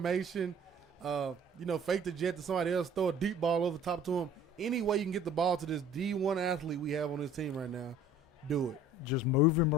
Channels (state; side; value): normal; both; correlation 0.49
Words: fake the jet to somebody else, throw a deep ball over top to him. Any way you can get the ball to this D1 athlete we have on this team right now, do it. Just move him